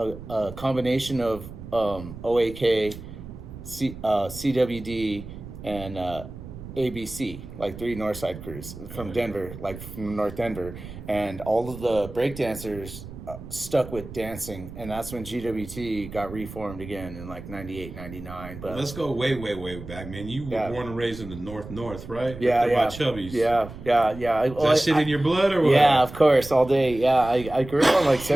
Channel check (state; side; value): noise; right; rumble, 13 dB below the sound